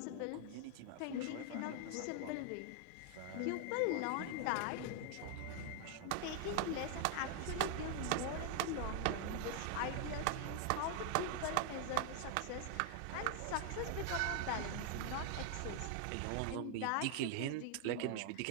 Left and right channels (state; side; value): different; both; correlation 0.00